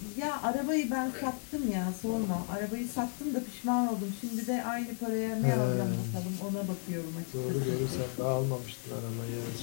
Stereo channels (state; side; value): quieter; right; 39.6 dB